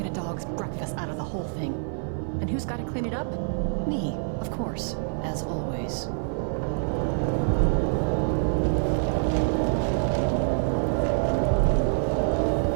a dog's breakfast out of the whole thing. And who's got to clean it up? Me, of course, as always.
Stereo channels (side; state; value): left; silent; 61 dB below the other